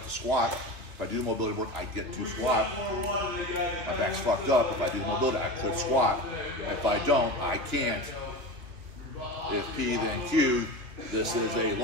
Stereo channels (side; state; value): left; late; 3.2 ms